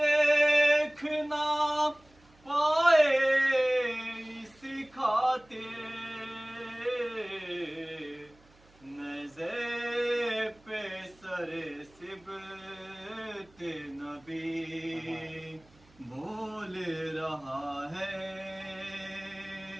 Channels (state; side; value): noise; right; hum, 29 dB below the sound